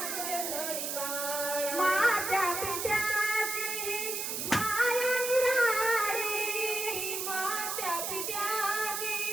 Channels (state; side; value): noise; right; hiss, 2 dB below the sound